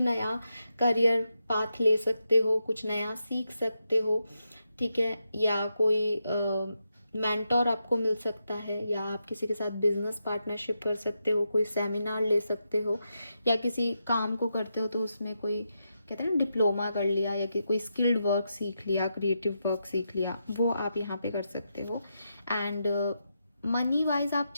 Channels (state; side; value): inverted; both; correlation -0.85